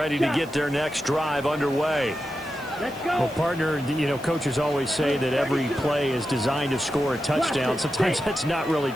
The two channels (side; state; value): right; noise; hiss, 23 dB below the sound